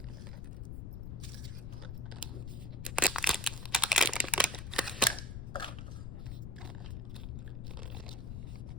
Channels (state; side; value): noise; left; rumble, 6 dB below the sound